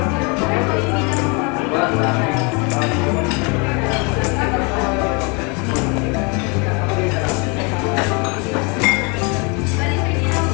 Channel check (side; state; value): right; quieter; 31.4 dB